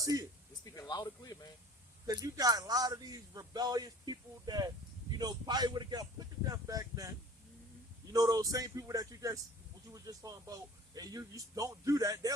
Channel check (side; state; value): both; normal; correlation 0.46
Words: it. It's speaking loud and clear, man. Because you got a lot of these rebellious people that, you know, probably would have got put to death back then. You know, those same people that what you were just talking about, and you don't do that,